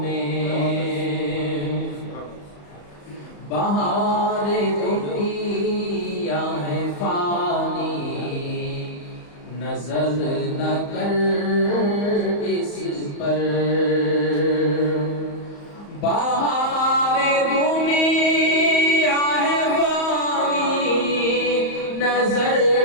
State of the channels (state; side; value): late; right; 35 ms